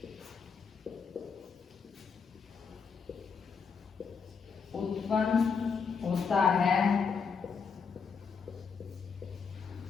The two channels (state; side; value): quieter; right; 5.7 dB